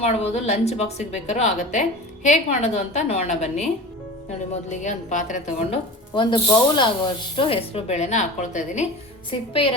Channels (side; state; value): both; normal; correlation 0.34